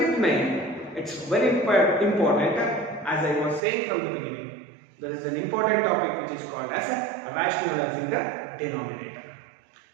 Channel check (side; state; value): left; drops out; at 3.6 s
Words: main, it's very important, as I was saying from the beginning. There is an important topic which is called as rationalizing the denominator.